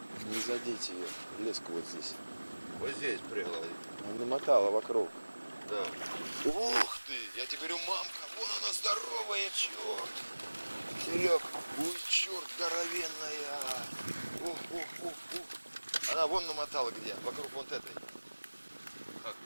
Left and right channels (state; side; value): inverted; both; correlation -1.00